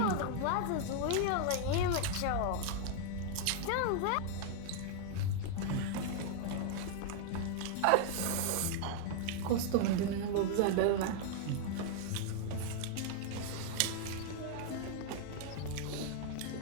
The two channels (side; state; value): both; different; correlation 0.00